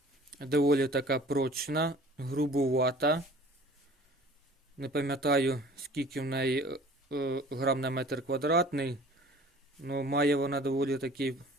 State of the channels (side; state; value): both; normal; correlation 0.48